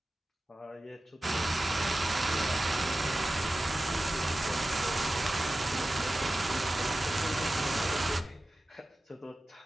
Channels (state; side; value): normal; both; correlation 0.94